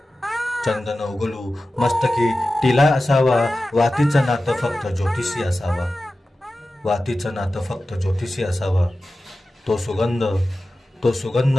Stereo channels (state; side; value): normal; both; correlation 0.94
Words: चंदन उगलू मस्तकी टिला असावा. वातीचं नातं फक्त ज्योतिषी असावा, वातीचं नातं फक्त ज्योतिषी असावा. तो सुगंध